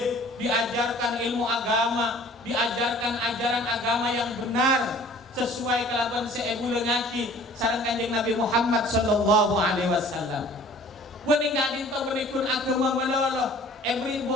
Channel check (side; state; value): both; normal; correlation 0.50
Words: diajarkan ilmu agama, diajarkan ajaran agama yang benar sesuai kelaban seebu lengaki sareng Kanjeng Nabi Muhammad sallallahu alaihi wasallam. Beuning Kak Dinto menikun agama melolo. Beri